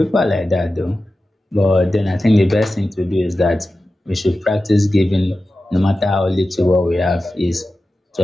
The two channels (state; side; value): normal; both; correlation 0.94